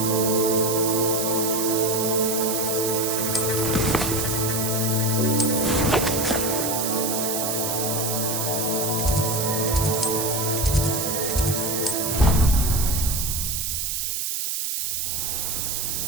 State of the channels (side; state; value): right; noise; hiss, 1 dB below the sound